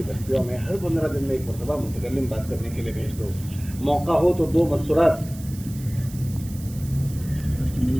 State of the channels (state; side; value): noise; right; hiss, 18 dB below the sound